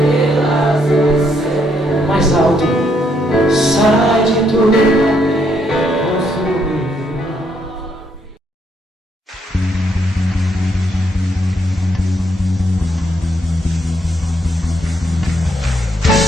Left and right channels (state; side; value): normal; both; correlation 0.74